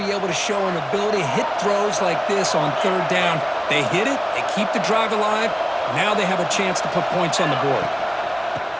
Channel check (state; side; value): identical; both; correlation 1.00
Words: able to show an ability to hit throws like this on 3rd down. They hit it, they keep the drive alive. Now they have a chance to put points on the board.